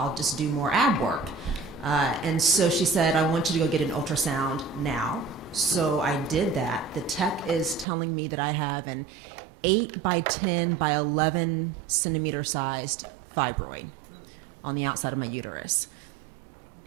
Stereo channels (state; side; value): drops out; left; at 7.9 s